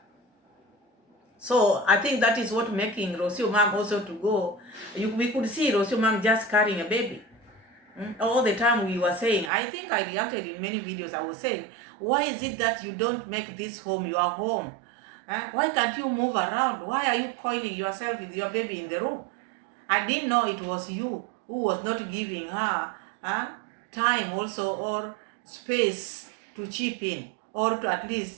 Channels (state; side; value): drops out; left; at 9.5 s